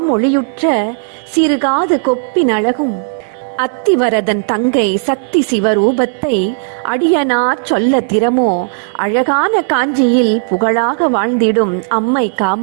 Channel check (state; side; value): silent; left; digital silence